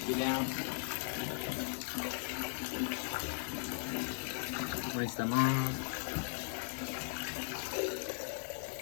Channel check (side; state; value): right; silent; digital silence